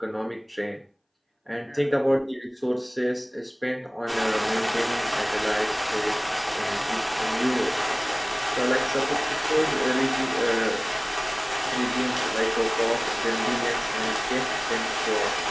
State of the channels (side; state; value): both; identical; correlation 1.00